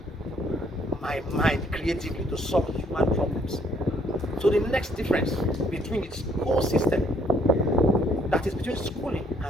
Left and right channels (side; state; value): both; normal; correlation 0.65